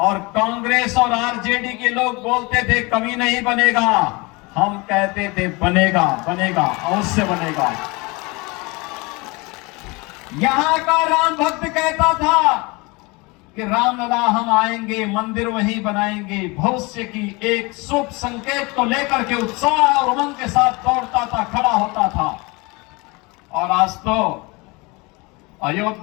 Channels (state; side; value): quieter; right; 26.0 dB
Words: कांग्रेस और आरजेडी के लोग बोलते थे कभी नहीं बनेगा। हम कहते थे बनेगा, बनेगा, अवश्य बनेगा। यहां का राम भक्त कहता था कि रामलला हम आएंगे, मंदिर वहीं बनाएंगे। भविष्य की एक शुभ संकेत को लेकर के उत्साह और उमंग के साथ दौड़ता था, खड़ा होता था। और आज तो